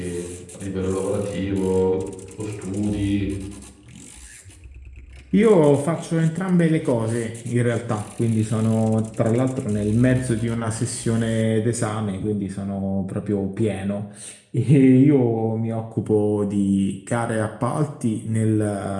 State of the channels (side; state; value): both; identical; correlation 1.00